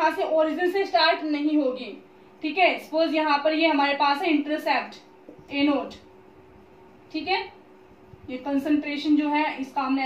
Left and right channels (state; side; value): identical; both; correlation 1.00